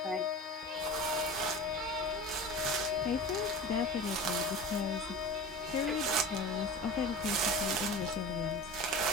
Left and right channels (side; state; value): both; normal; correlation 0.33